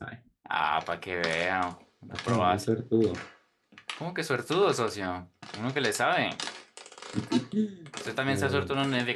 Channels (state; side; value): identical; both; correlation 1.00